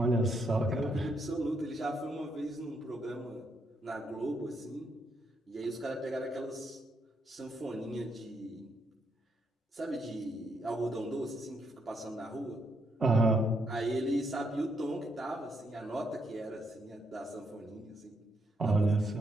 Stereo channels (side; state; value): both; normal; correlation 0.77